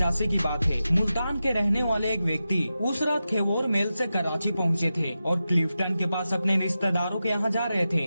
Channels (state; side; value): inverted; both; correlation -0.92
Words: की बात है। मुल्तान के रहने वाले एक व्यक्ति उस रात खेवोर मेल से कराची पहुंचे थे और क्लिफ्टन के पास अपने रिश्तेदारों के यहाँ जा रहे थे।